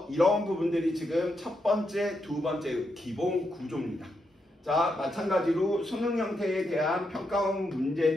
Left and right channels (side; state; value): both; normal; correlation 0.82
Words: 이런 부분들이 지금 첫 번째, 두 번째 기본 구조입니다. 자, 마찬가지로 수능 형태에 대한 평가원